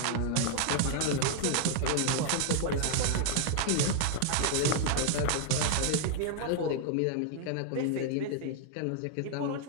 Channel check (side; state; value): both; different; correlation 0.00